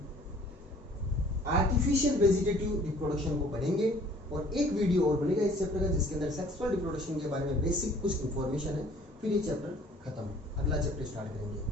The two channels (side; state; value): both; normal; correlation 0.54